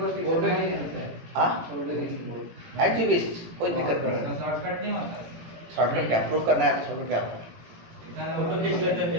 बोर्ड पे नहीं करता है। हाँ एक्टिविस्ट कोई दिक्कत नहीं है। शॉर्टकट नहीं होता। शॉर्टकट क्या प्रूफ करना है तो शॉर्टकट क्या होता है। फोटो खींच लेते हैं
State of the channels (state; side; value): late; left; 18 ms